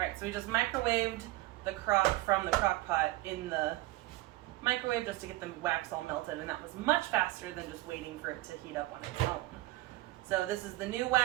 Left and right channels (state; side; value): quieter; left; 18.7 dB